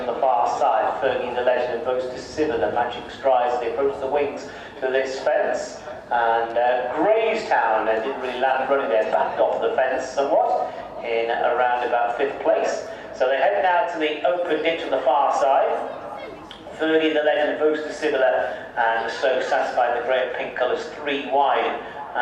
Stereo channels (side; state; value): both; identical; correlation 1.00